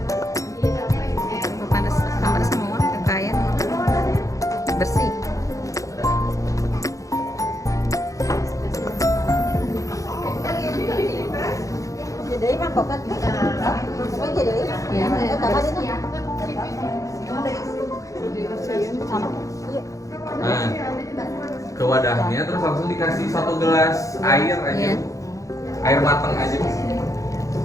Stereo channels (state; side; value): late; right; 0.16 ms